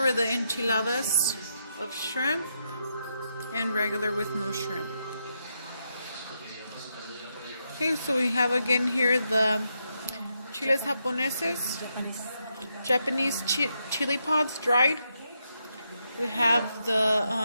the enchiladas of shrimp and regular with no shrimp. Okay, so we have again here the chiles japoneses, Japanese chili pods dried. We have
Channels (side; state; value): both; inverted; correlation -0.82